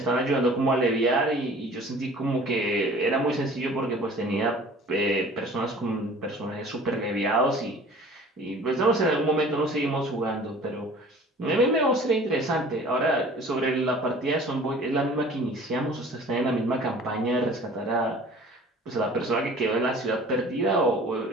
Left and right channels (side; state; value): both; normal; correlation 0.47